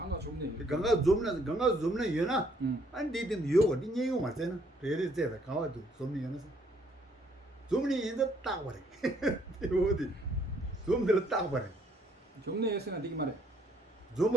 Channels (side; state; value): both; normal; correlation 0.66